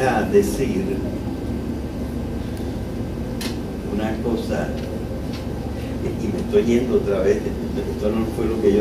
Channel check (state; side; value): identical; both; correlation 1.00